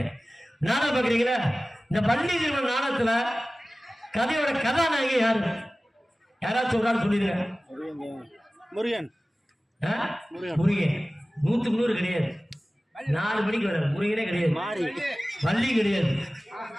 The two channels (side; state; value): both; normal; correlation 0.97